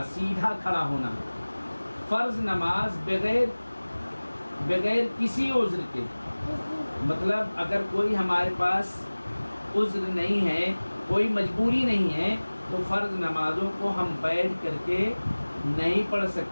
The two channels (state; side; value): inverted; both; correlation -1.00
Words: سیدھا کھڑا ہونا. فرض نماز بغیر کسی عذر کے، مطلب اگر کوئی ہمارے پاس عذر نہیں ہے، کوئی مجبوری نہیں ہے، تو فرض نمازوں کو ہم بیٹھ کر کے نہیں پڑھ